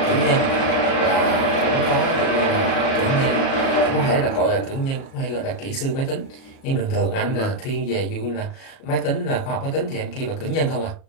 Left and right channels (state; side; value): late; right; 37 ms